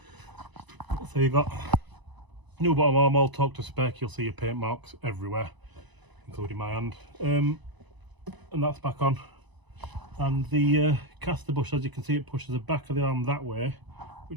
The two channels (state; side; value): late; left; 1.0 ms